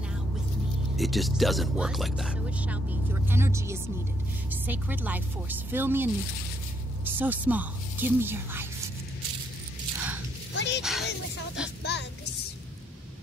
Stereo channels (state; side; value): normal; both; correlation 0.73